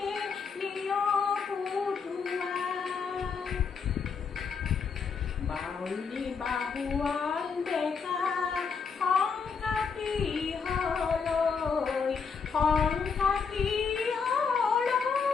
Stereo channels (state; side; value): quieter; right; 5.6 dB